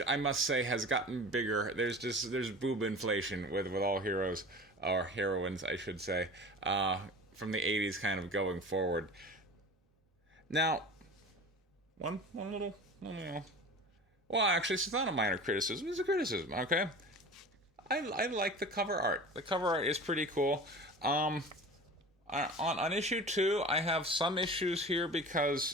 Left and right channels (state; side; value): normal; both; correlation 0.37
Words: I must say, has gotten bigger. There's boob inflation with all heroes, or heroines, I should say, from the '80s, kind of going forward. Now, one little, well, actually, it's not a minor criticism. It's a criticism. Okay, I like the cover art. The cover art is pretty cool. On issue 2, I have some issues here